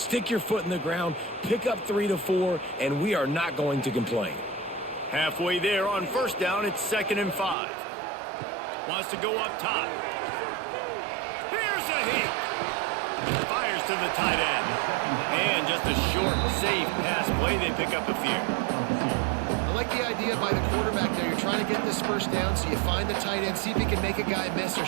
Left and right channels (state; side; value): drops out; left; at 7.6 s